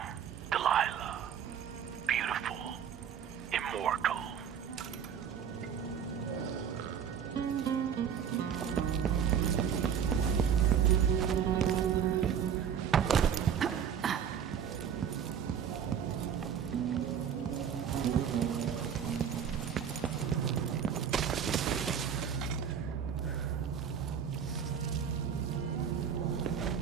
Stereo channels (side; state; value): left; quieter; 8.1 dB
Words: Delilah. Beautiful. Immortal.